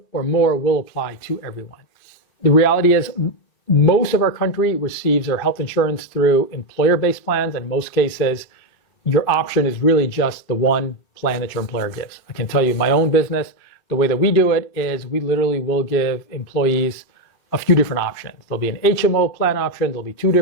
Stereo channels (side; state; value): right; late; 2.6 ms